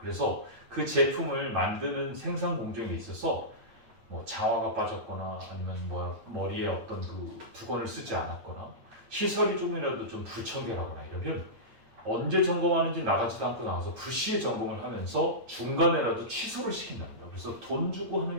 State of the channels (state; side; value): late; left; 9.0 ms